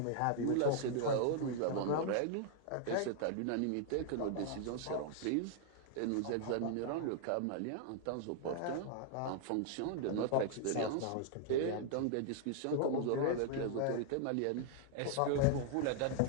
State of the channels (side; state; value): both; different; correlation 0.00